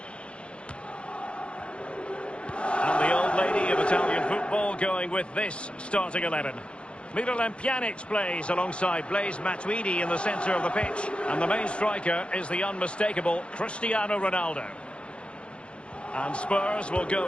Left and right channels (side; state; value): right; late; 0.059 ms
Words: And the old lady of Italian football going with this starting 11. Miralem Pjanic plays alongside Blaise Matuidi in the centre of the pitch. And the main striker is the unmistakable Cristiano Ronaldo. And Spurs will